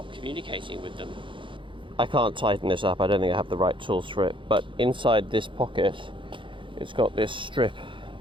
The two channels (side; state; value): left; late; 0.24 ms